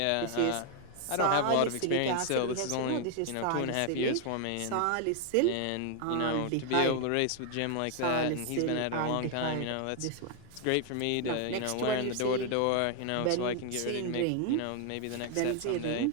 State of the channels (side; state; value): both; different; correlation 0.00